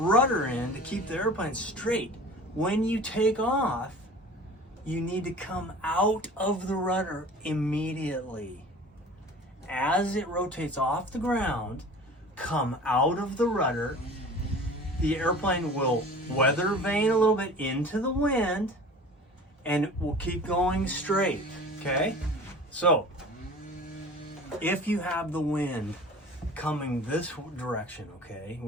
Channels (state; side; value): normal; both; correlation 0.41